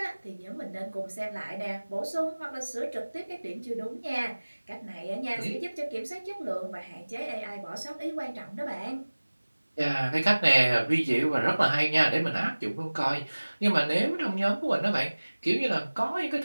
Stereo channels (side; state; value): both; inverted; correlation -1.00